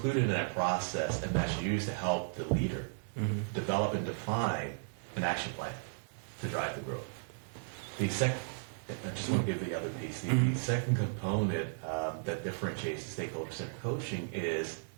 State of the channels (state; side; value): silent; left; 55 dB below the other